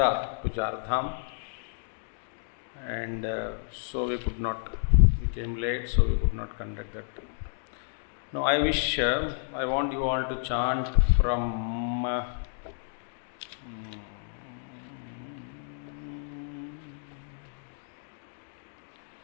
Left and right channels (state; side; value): silent; right; digital silence